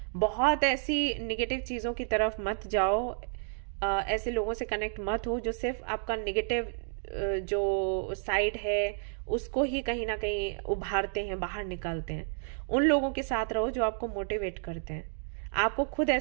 बहुत ऐसी निगेटिव चीज़ों की तरफ मत जाओ, ऐसे लोगों से कनेक्ट मत हो जो सिर्फ आपका निगेटिव जो साइड है उसको ही कहीं ना कहीं उभारते हैं, बाहर निकालते हैं। उन लोगों के साथ रहो जो आपको मोटिवेट करते हैं। आपको खुद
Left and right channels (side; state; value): left; silent; digital silence